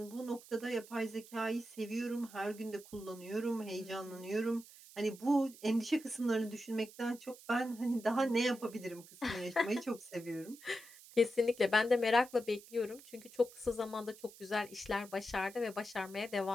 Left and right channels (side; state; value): right; noise; hiss, 20 dB below the sound